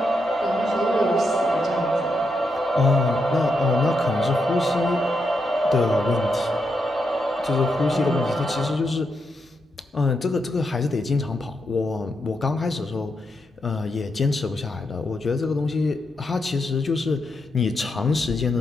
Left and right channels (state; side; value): normal; both; correlation 0.83